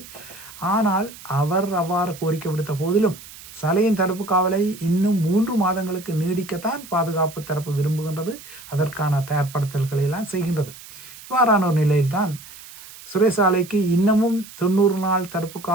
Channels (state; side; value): noise; right; hiss, 17 dB below the sound